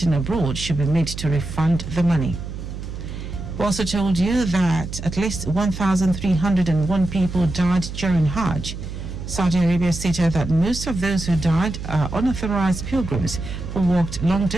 abroad should be made to refund the money. We also told you that at least 1,301 people died during Hajj. Saudi Arabia stated that most of those who died are unauthorized pilgrims who walked long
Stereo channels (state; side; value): noise; right; hum, 8 dB below the sound